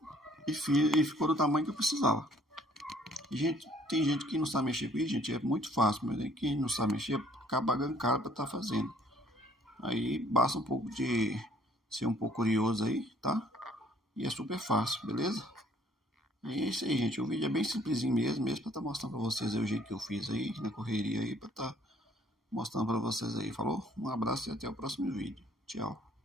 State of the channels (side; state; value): both; normal; correlation 0.60